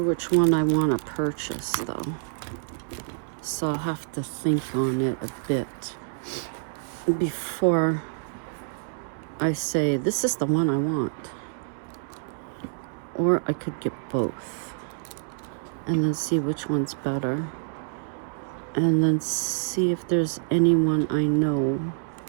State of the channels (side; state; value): left; silent; 60 dB below the other